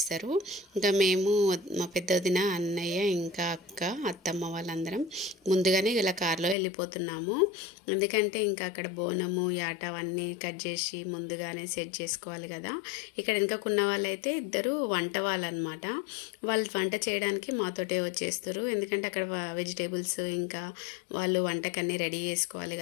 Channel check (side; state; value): right; drops out; at 6.6 s